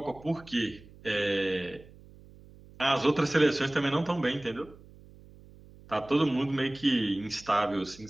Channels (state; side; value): noise; right; hum, 22 dB below the sound